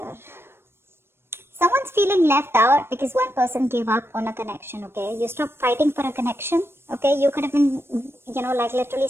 Someone's feeling left out because one person gave up on a connection, okay? You stopped fighting for a connection, okay? You could have been, like literally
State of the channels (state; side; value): late; left; 0.12 ms